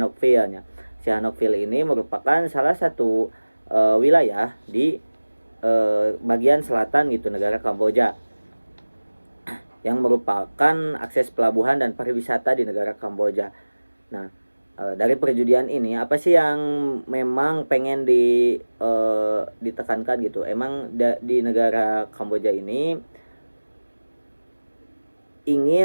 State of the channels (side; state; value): both; inverted; correlation -1.00